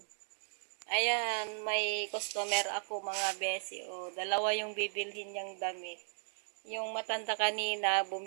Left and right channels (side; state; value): left; silent; digital silence